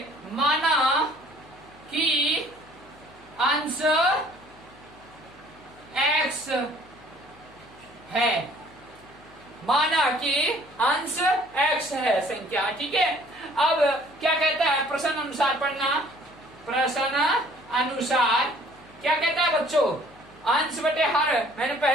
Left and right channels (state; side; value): noise; left; hum, 25 dB below the sound